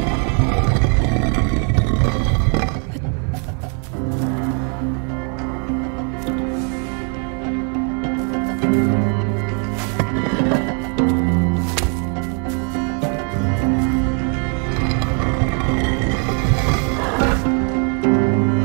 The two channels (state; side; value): quieter; left; 39.6 dB